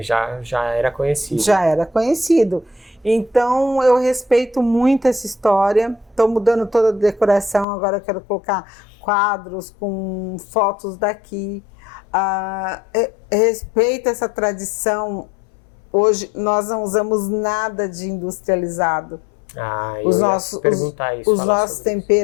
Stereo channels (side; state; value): right; drops out; at 7.7 s